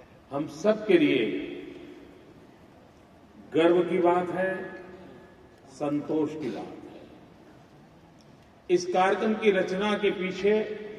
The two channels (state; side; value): identical; both; correlation 1.00